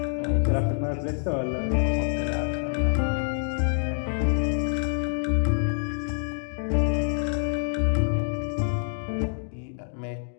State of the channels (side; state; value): right; silent; digital silence